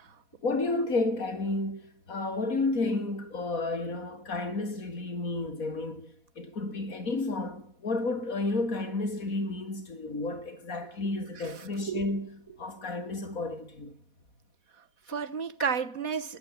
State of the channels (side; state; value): right; late; 4.1 ms